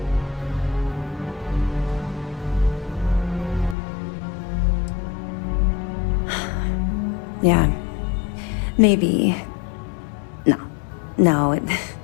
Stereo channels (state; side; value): drops out; right; at 3.8 s